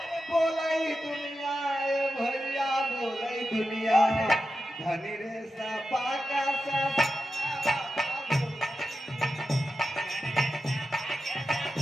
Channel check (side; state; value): both; normal; correlation 0.91